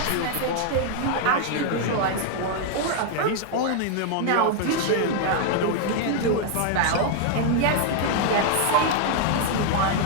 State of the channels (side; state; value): both; different; correlation 0.00